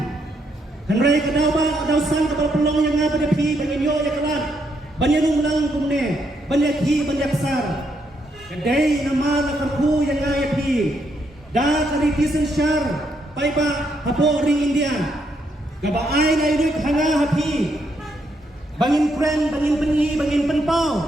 Henry kadaw ba daw sang kapal pelong yang nga pada pi bangin yo ya kalat banyak lang kumne banyak hi banyak sar kadai nama lakarku yang nga ya pi da karitisan syar pai ba hapo ring India kabaay na iduit hanga hapi bangin friend bangin penyi bangin penpau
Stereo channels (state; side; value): normal; both; correlation 0.76